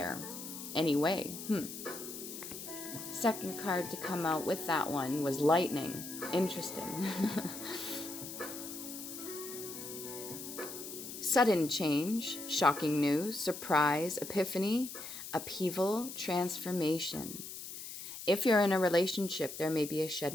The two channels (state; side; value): noise; left; hiss, 10 dB below the sound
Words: Anyway. Second card to come out with that one was lightning. Interesting. Sudden change, shocking news, surprise, epiphany, upheaval, transformation. If you're in a relationship, there may be a